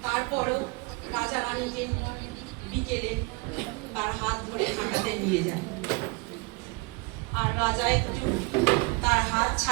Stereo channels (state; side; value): quieter; left; 27.1 dB